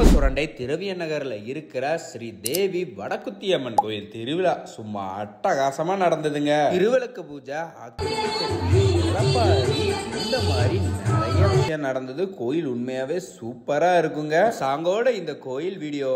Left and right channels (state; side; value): identical; both; correlation 1.00